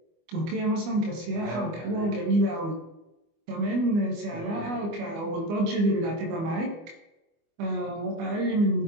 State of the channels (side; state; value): left; late; 24 ms